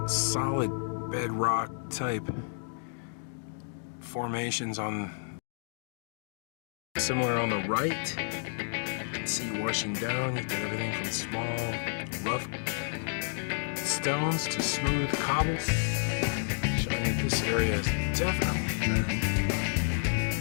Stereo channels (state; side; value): silent; right; digital silence